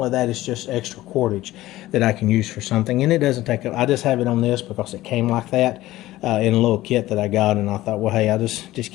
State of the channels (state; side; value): quieter; right; 16.4 dB